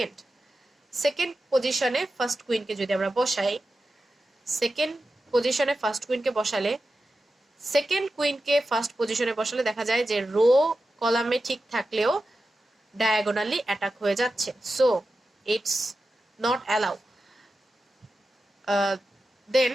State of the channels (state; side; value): normal; both; correlation 0.92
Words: সেকেন্ড পজিশনে ফার্স্ট কুইনকে যদি আমরা বসাই, সেকেন্ড পজিশনে ফার্স্ট কুইনকে বসালে, সেকেন্ড কুইনকে ফার্স্ট পজিশনে বসালে দেখা যায় যে রো কলামে ঠিক থাকলেও ডায়াগোনালি অ্যাটাক হয়ে যাচ্ছে, so it's not allow. Then